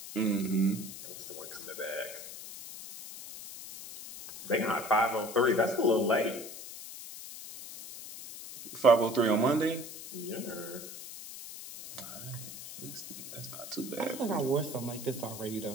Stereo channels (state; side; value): noise; left; hiss, 12 dB below the sound